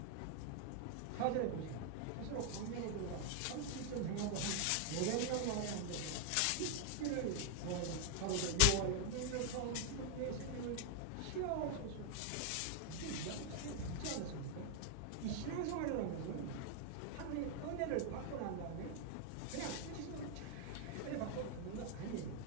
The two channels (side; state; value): both; different; correlation 0.00